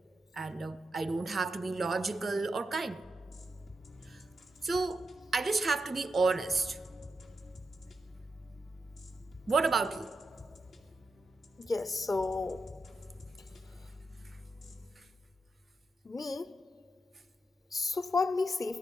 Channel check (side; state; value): both; normal; correlation 0.86